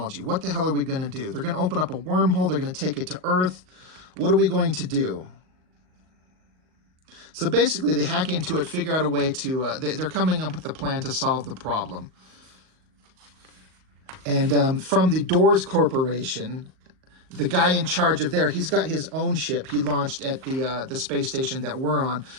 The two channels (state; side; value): late; left; 38 ms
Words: What the hell are we going to do? They're going to open up a wormhole. They're going to take it to Earth. What are we going to do? So basically they hack into it, figure out a way to, they're coming up with a plan to solve the problem. And from the Doors Corporation, the guy in charge of there, he's got his own ship he launched at the space station that we're on.